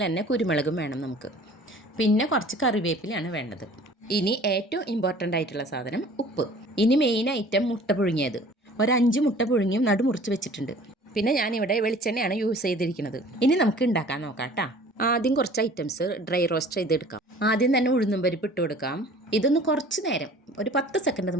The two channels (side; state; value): both; normal; correlation 0.48